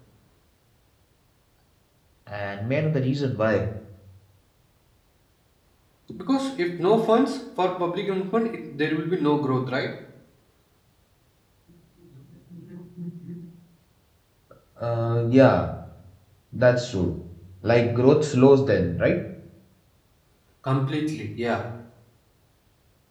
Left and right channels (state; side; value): identical; both; correlation 1.00